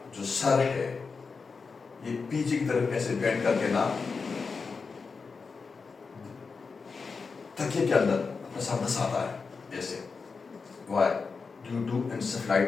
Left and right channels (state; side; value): quieter; right; 4.8 dB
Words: जो सर है ये पीछे की तरफ ऐसे बेंड करके ना तकिए के अंदर अपना सर दसाता है ऐसे। Why? Due to